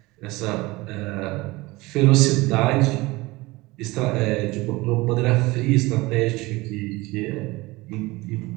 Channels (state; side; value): quieter; left; 21.5 dB